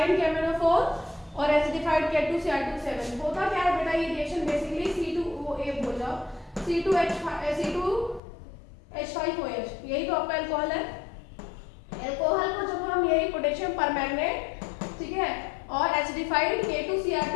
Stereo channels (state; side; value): drops out; right; at 8.2 s